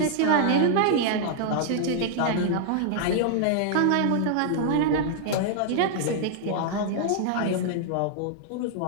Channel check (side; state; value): both; different; correlation -0.01